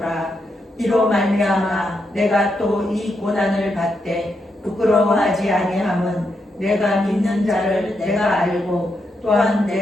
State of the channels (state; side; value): normal; both; correlation 0.82